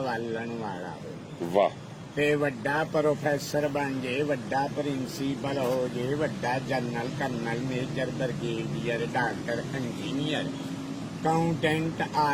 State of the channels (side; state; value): both; identical; correlation 1.00